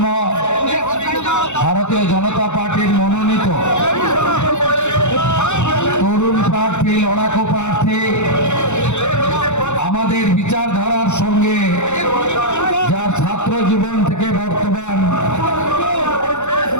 ভারতীয় জনতা পার্টির মনোনীত তরুণ প্রার্থী, লড়াকু প্রার্থী, আমাদের বিচারধারার সঙ্গে যার ছাত্র জীবন থেকে বর্তমান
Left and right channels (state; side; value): late; right; 0.83 ms